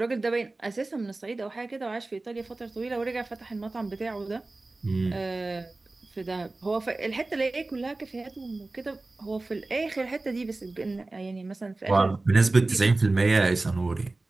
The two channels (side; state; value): left; quieter; 3.1 dB